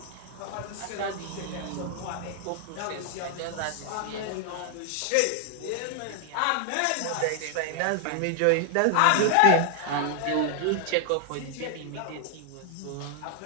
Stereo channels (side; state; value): both; different; correlation 0.00